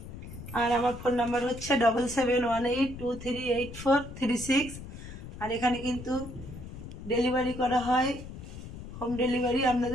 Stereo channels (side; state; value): left; noise; rumble, 12 dB below the sound